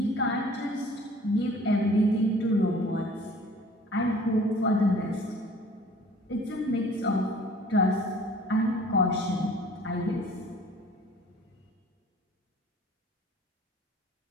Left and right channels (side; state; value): both; normal; correlation 0.50